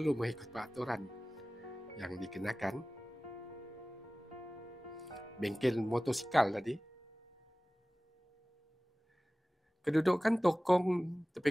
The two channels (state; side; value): normal; both; correlation 0.98